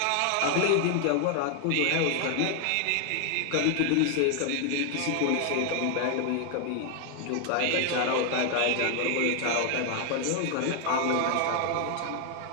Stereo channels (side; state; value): both; different; correlation 0.00